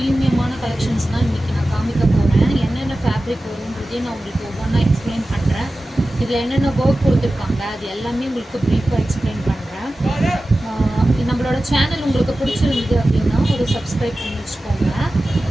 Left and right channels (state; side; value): normal; both; correlation 0.95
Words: கலெக்ஷன்ஸ் தான் இன்னைக்கு நான் காமிக்க போறேன். என்னென்ன ஃபேப்ரிக் வரும்ன்றதை நான் உங்களுக்கு ஒவ்வொன்றா எக்ஸ்பிளைன் பண்றேன். இதில் என்னென்ன ஒர்க் கொடுத்துருக்காங்க அது எல்லாமே உங்களுக்கு ப்ரீஃபாக எக்ஸ்பிளைன் பண்ணுறேன். நம்மளோட சேனல் உங்களுக்கு பிடிச்சிருந்தது அப்படின்னா ஒரு சப்ஸ்கிரைப் பண்ணி வச்சுக்கோங்க.